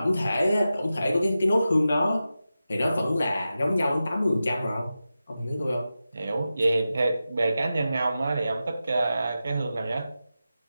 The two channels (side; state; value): both; inverted; correlation -0.92